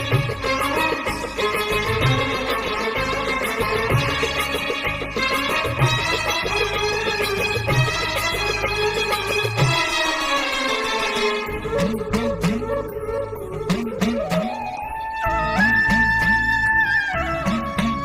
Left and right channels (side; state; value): both; identical; correlation 1.00